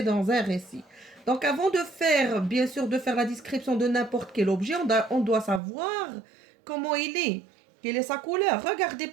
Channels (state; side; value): drops out; left; at 5.6 s